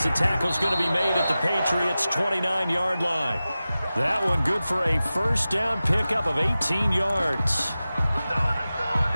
the tackle's going to be made at the Patriots' 29-yard line. That one good for a first down pickup of 18 yards.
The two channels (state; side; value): inverted; both; correlation -0.95